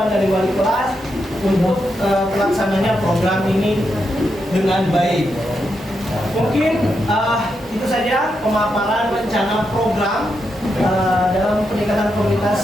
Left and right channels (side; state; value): both; normal; correlation 0.84